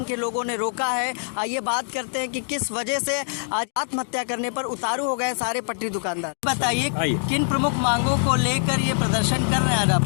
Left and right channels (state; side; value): silent; right; digital silence